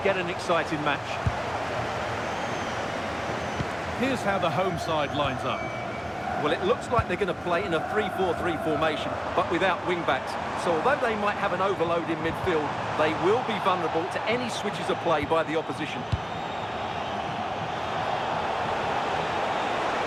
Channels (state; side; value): identical; both; correlation 1.00